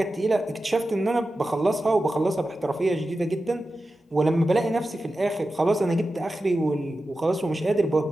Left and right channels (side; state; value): both; normal; correlation 0.93